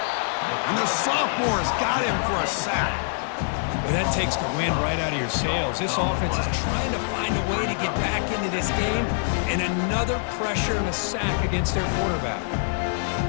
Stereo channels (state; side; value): silent; right; digital silence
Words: the sophomore's got him for a sack. Well, that takes the wind right out of your sails. This offense is trying to find a way to get back into this game, and another pressure and a sack against their quarterback.